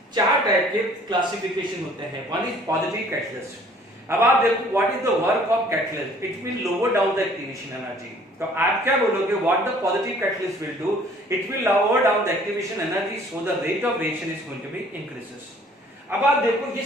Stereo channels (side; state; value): both; normal; correlation 0.56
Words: चार टाइप के क्लासिफिकेशन होते हैं। One is positive catalyst. अब आप देखो what is the work of catalyst, it will lower down the activation energy. तो आप क्या बोलोगे, what the positive catalyst will do, it will lower down the activation energy so the rate of reaction is going to be increases. अब आप देखो ये